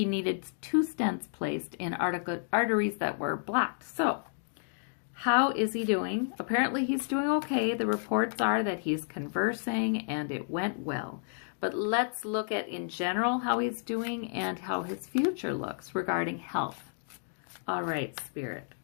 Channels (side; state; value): right; silent; digital silence